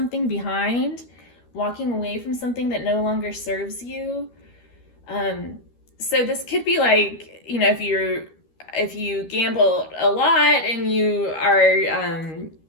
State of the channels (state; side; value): late; right; 13 ms